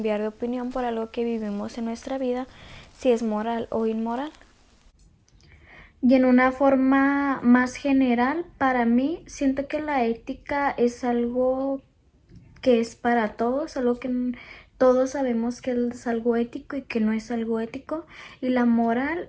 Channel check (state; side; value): identical; both; correlation 1.00